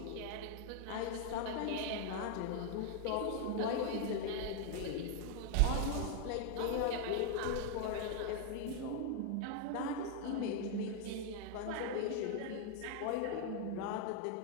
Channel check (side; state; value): both; different; correlation 0.00